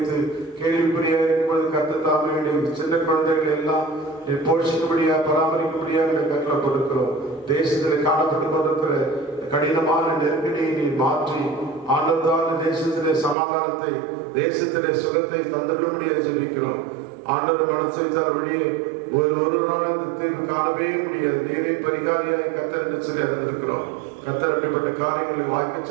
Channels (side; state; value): left; drops out; at 13.4 s